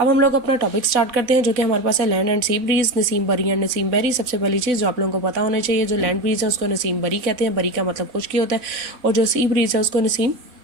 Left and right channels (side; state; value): left; late; 3.5 ms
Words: हम लोग अपना टॉपिक स्टार्ट करते हैं, जो कि हमारे पास है land and sea breeze, Naseem बरी एंड नसीम बेरी। सबसे पहली चीज़ जो आप लोगों को पता होना चाहिए, जो लैंड ब्रीज है उसको नसीम बरी कहते हैं, बरी का मतलब खुश्की होता है, और जो सी ब्रीज है उसको नसीम